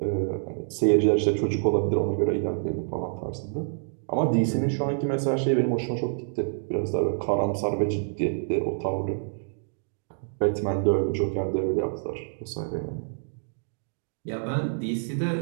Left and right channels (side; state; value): left; silent; digital silence